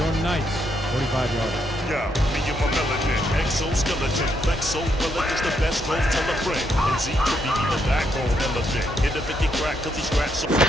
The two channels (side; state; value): both; normal; correlation 0.76